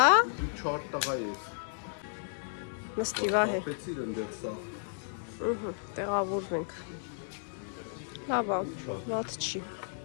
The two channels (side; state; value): right; silent; digital silence